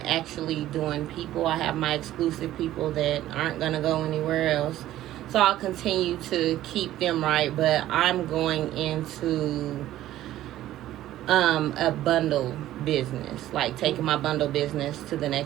doing people. I have my exclusive people that aren't going to go anywhere else. So I'll continue to keep them right, but I'm going into a bundle business, like taking my bundle business to the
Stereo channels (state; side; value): quieter; left; 13.9 dB